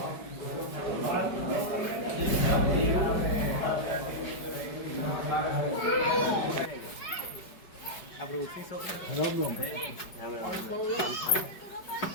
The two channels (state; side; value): late; right; 5.0 ms